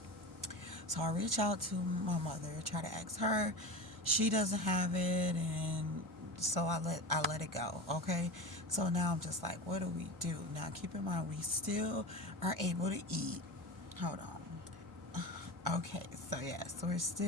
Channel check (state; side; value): normal; both; correlation 0.27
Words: So I reach out to my mother, try to ask her. She doesn't have it, and so I let it go. Okay, so now I'm just like, what do we do now? Keep in mind, we still are able to eat. Hold on. Okay, so yes, we're